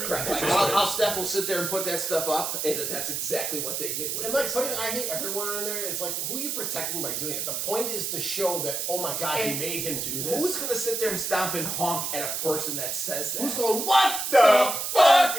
correct. Like, how Steph will sit there and put that stuff up, and that's exactly what they did with And like this. putting I hate everyone on there is like, who are you protecting by doing it? The point is to show that, oh my god, he And made him do this. Who's going to sit there and stomp and honk at a person that says that? Who's going, what the fuck?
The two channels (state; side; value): noise; right; hiss, 2 dB below the sound